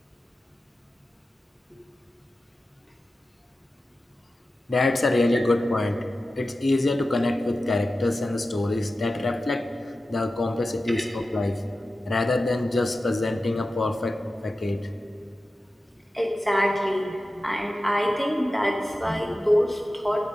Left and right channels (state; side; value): normal; both; correlation 0.94